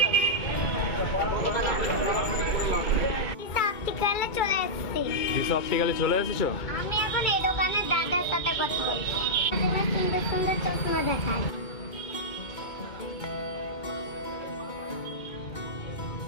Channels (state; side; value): late; right; 2.2 ms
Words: অপটিক্যালে চলে এসেছি। দিশা অপটিক্যালে চলে এসেছো? আমি এখন এই দোকানের দাদার সাথে কথা বলছি। সুন্দর সুন্দর চশমা দেখায়।